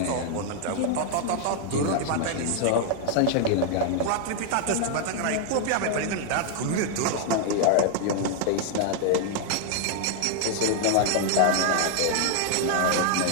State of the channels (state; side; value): different; both; correlation 0.00